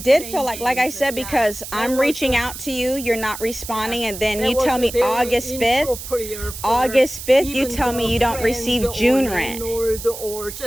feel like I said, because I'm reaching out to you, you're not responding, and then you tell me August 5th. August 5th, you tell me you don't receive June rent. Or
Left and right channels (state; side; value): noise; right; hiss, 10 dB below the sound